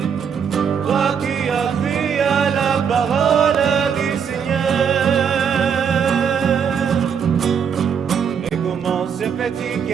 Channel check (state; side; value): quieter; left; 7.2 dB